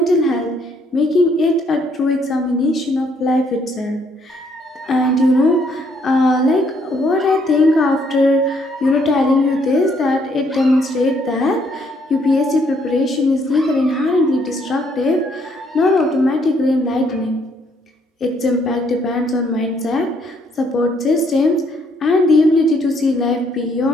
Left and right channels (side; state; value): both; normal; correlation 0.69